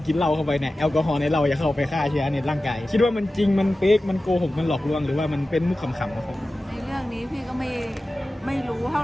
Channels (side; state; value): both; normal; correlation 0.95